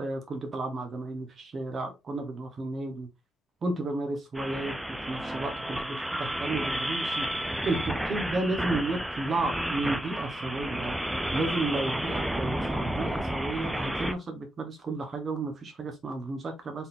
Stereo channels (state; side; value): normal; both; correlation 0.87